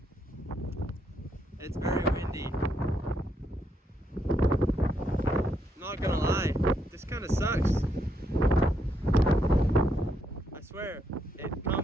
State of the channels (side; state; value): both; normal; correlation 0.77